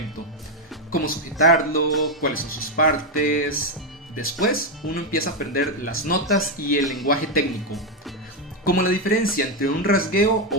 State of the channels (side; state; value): both; normal; correlation 0.05